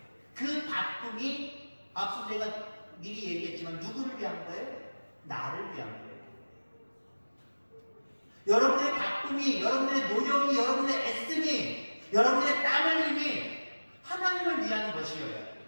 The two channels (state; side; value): inverted; both; correlation -1.00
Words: 그 바쁨이 앞서 제가 미리 얘기했지만 누구를 위한 거예요? 나를 위한 거예요. 여러분들의 바쁨이, 여러분들의 노력이, 여러분들의 애씀이, 여러분들의 땀 흘림이 하나님을 위한 것이어야 돼요.